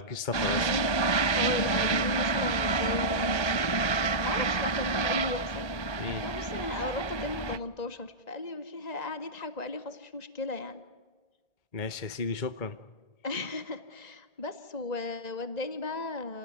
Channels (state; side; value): late; right; 1.3 ms